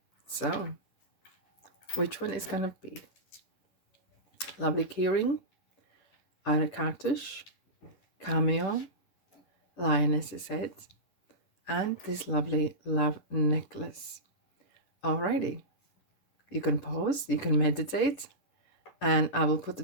so which one is gonna be? Lovely keyring, a Kartush, Cameo, Lioness's head, and this lovely love necklace. Alrighty, you can pause, you can meditate, and I will put the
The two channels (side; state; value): right; late; 10 ms